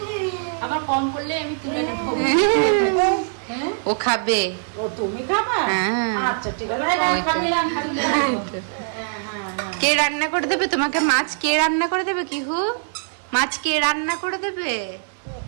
আমার কম করলে আমি তুলে নেবো। ও খাবে। ও তুমি খাবা? হ্যাঁ। আচ্ছা ঠিক আছে। কে রান্না করে দেবে তোমাকে মাছ? কে রান্না করে দেবে কিহু? মাছ কে রান্না করে দেবে?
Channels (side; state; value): left; silent; digital silence